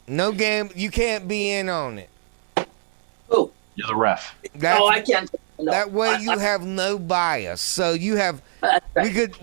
No gamble. You can't be in on it. Oh, you're the ref. I can't. No, that way you have no bias. So you have.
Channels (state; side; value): silent; left; digital silence